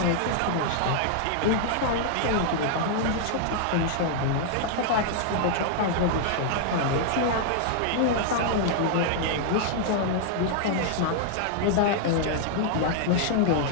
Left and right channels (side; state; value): both; different; correlation -0.01